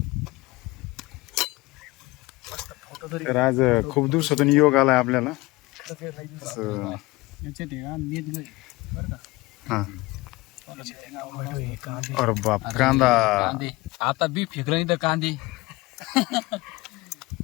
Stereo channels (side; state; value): right; quieter; 21.5 dB